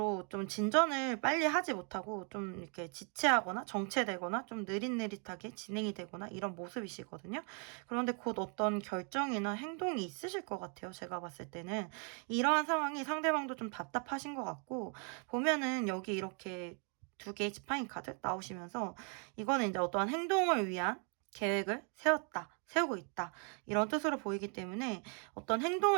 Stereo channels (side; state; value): left; quieter; 38.7 dB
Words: 좀 진전을 빨리 하지 못하고 좀 이렇게 지체하거나 정체되거나 좀 느릿느릿하게 진행이 되거나 이런 모습이시거든요. 그런데 곧 어떤 결정이나 행동이 있으실 것 같아요. 제가 봤을 때는. 이러한 상황이 상대방도 좀 답답하신 것 같고 보면은 여기 이렇게 두 개의 지팡이 카드 나오시면서 이거는 이제 어떠한 행동을 위한 계획을 세우고 있다. 이런 뜻으로 보이기 때문에 어떤